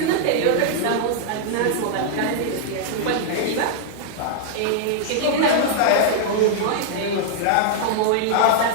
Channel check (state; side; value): different; both; correlation -0.01